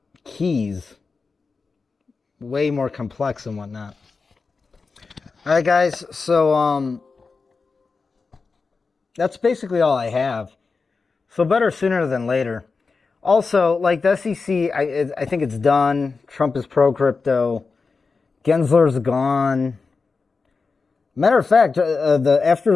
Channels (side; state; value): right; quieter; 4.5 dB